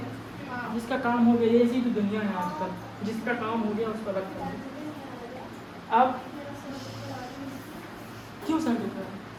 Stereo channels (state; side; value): identical; both; correlation 1.00